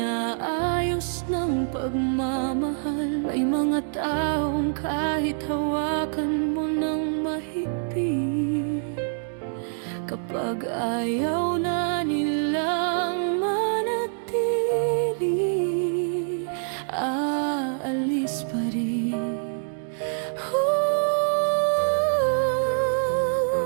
ng pagmamahal. May mga taong kahit hawakan mo ng mahigpit, kapag ayaw na nilang manatili, aalis pa rin.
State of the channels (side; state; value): left; silent; digital silence